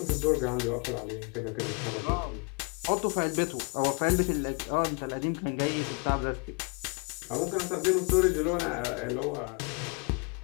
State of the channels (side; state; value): right; quieter; 32.3 dB